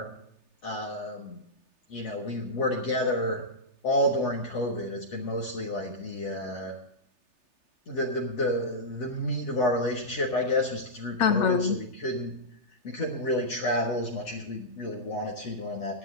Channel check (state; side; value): late; right; 3.3 ms